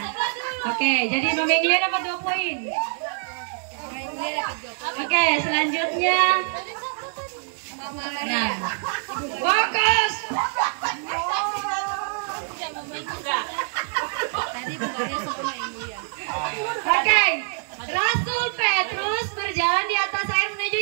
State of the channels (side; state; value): left; silent; 62 dB below the other